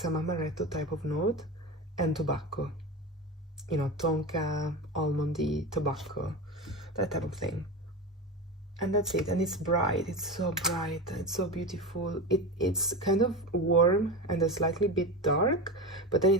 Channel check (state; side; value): normal; both; correlation 0.23